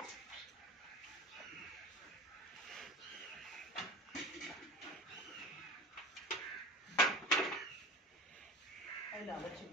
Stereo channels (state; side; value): normal; both; correlation 0.36